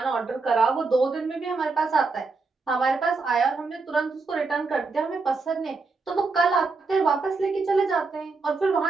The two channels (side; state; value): left; quieter; 4.1 dB